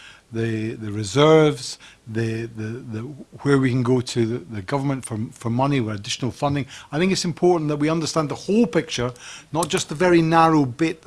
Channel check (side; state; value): both; identical; correlation 1.00